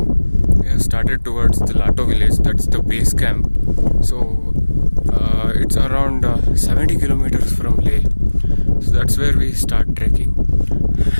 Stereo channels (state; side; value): inverted; both; correlation -1.00